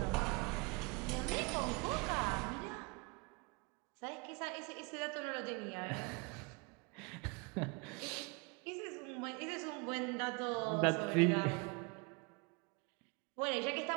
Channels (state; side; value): quieter; left; 30.0 dB